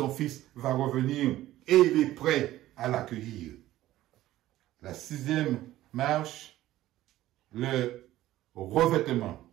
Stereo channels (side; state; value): left; quieter; 14.9 dB